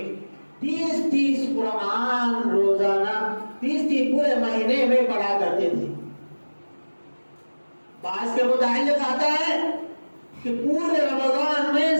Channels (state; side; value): inverted; both; correlation -1.00